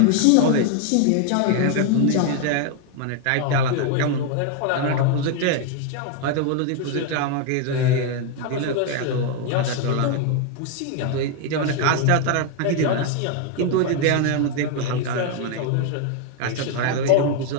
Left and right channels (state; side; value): different; both; correlation 0.01